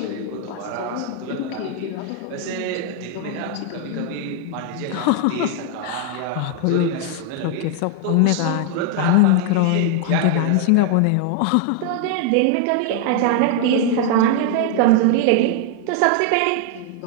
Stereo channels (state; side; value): different; both; correlation 0.00